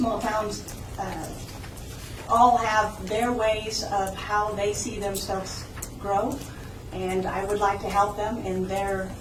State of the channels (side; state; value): both; identical; correlation 1.00